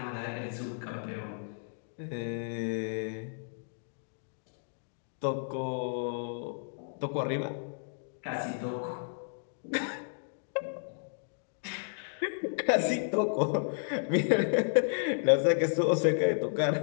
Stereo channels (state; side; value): silent; right; digital silence